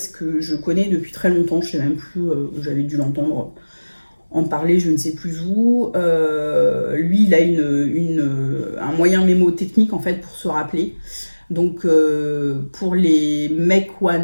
que je connais depuis très longtemps, je sais même plus, j'avais dû l'entendre en parler, je ne sais plus où. Lui, il a un moyen mémotechnique en fait pour se rappeler. Donc pour les make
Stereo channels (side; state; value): both; inverted; correlation -1.00